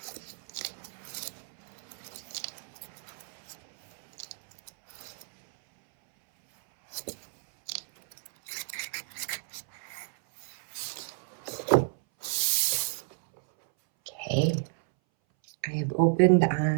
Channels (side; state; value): left; silent; 57 dB below the other